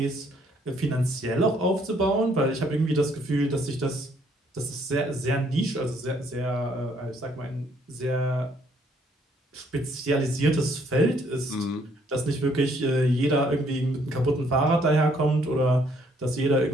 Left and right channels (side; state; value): both; normal; correlation 0.66